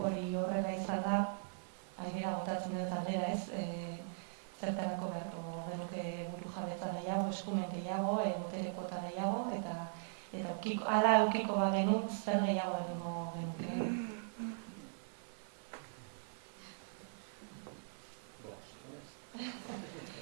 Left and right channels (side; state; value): left; silent; 51 dB below the other